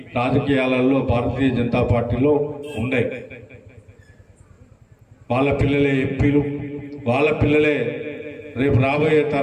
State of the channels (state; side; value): identical; both; correlation 1.00